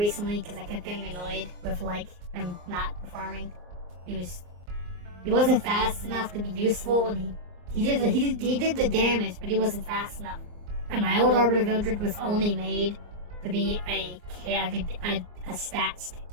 because I kept getting annoyed with like him not performing. He wasn't fast enough to be useful, and he did the damage, but he wasn't fast enough. And my old Arbiter Vildred was only made to be a stat stick.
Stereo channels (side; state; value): left; late; 24 ms